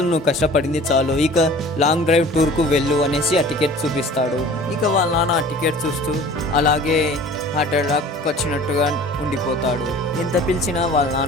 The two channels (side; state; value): both; normal; correlation 0.45